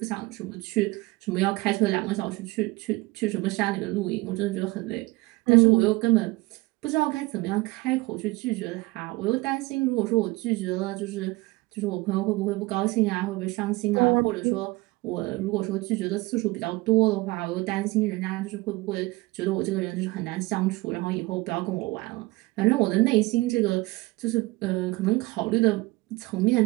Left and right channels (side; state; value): left; quieter; 22.1 dB